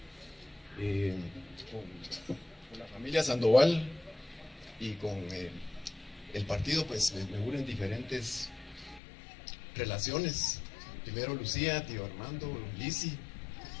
Con la familia Sandoval y con el partido, pues me unen diferentes relaciones. Primero Lucía, tío Armando, Lisi,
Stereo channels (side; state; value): right; drops out; at 9.0 s